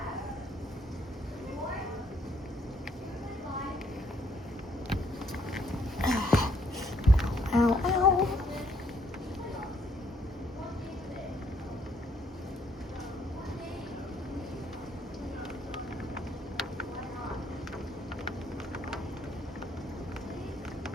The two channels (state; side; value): normal; both; correlation 0.68